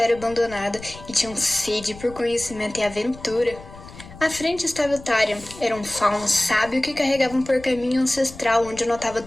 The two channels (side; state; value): left; noise; rumble, 17 dB below the sound